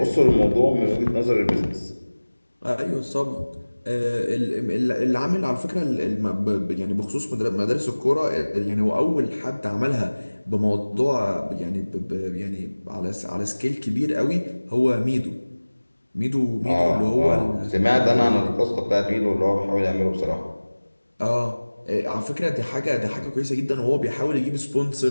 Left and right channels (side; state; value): both; inverted; correlation -1.00